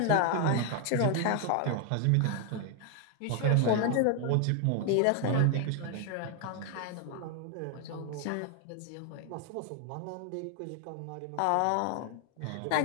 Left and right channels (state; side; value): different; both; correlation 0.00